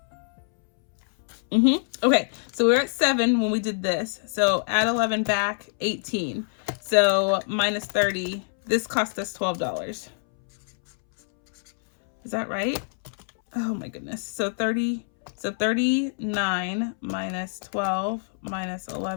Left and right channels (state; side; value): silent; right; 61 dB below the other